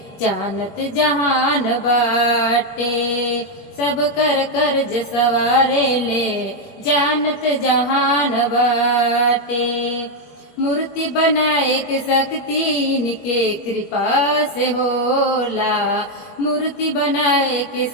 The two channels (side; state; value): right; late; 21 ms